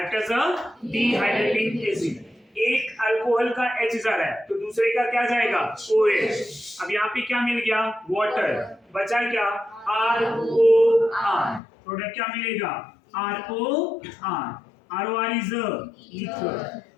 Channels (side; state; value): right; drops out; at 11.6 s